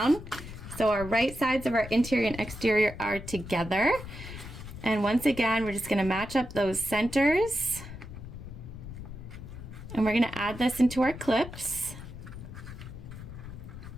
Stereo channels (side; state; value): left; noise; rumble, 12 dB below the sound